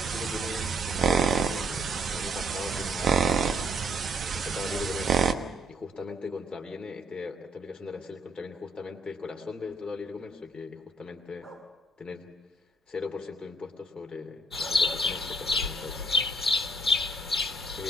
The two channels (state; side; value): normal; both; correlation 0.69